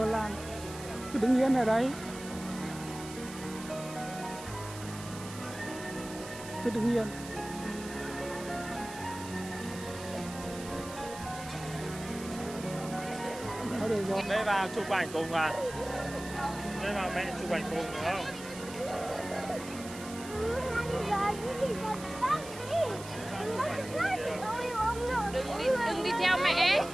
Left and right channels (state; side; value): noise; right; hiss, 14 dB below the sound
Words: Cứ đứng yên ở đấy. Cứ đứng yên. Đó, được rồi. Đây vào chụp ảnh cùng à? Đây vào mẹ chụp ảnh cùng được không? Đừng đi theo mẹ.